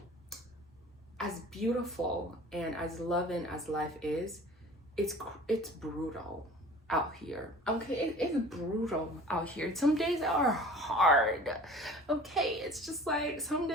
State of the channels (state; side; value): normal; both; correlation 0.44